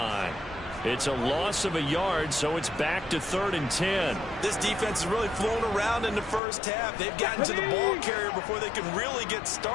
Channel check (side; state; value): right; drops out; at 6.4 s